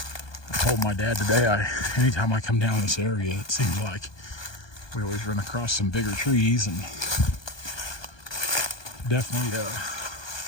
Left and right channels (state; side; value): late; right; 1.2 ms